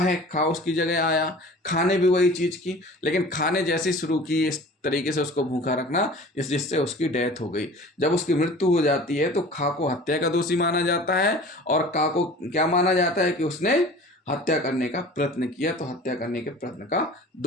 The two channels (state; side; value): normal; both; correlation 0.42